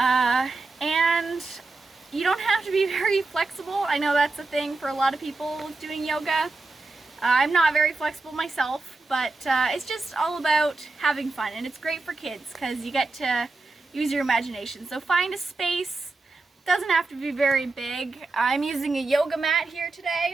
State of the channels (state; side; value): quieter; left; 3.5 dB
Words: And you don't have to be very flexible. I know that's a thing for a lot of people doing yoga. I'm not very flexible myself, but it's just all about having fun, and it's great for kids because you get to use your imagination. So find a space. It doesn't have to be very big. I'm using a yoga mat here